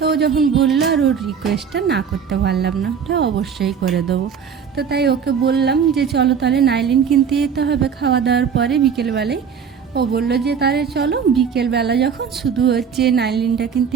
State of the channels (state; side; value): quieter; left; 7.0 dB